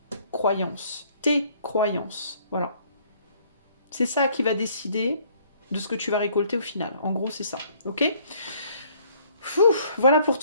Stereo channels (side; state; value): both; inverted; correlation -0.61